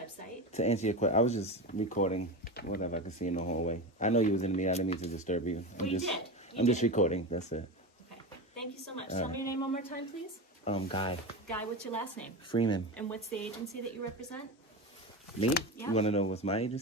To answer your question, I was just recording whatever I could see in the hallway. I know you was in the meeting. I didn't mean to disturb you. Well, you did. I'm just did. recording. That's it. Okay. Thank you so much. Tell me your name one more time, please. Guy Guy, what's your last name? Freeman. And what's the agency that you represent? Me? Yeah. You want to know what's my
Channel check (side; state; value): both; normal; correlation 0.22